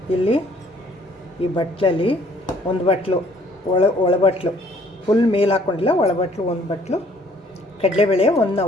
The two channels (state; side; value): normal; both; correlation 0.60